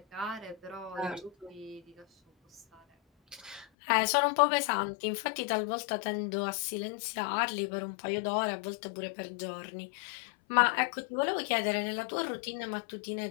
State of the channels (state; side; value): drops out; right; at 3.7 s